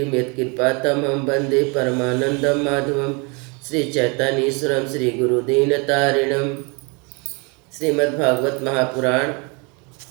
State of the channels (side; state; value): left; quieter; 31.1 dB